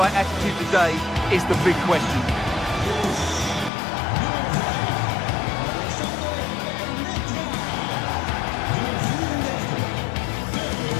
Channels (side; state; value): right; drops out; at 3.7 s